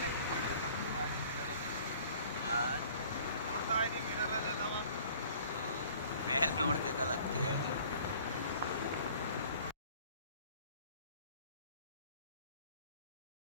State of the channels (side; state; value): both; inverted; correlation -0.51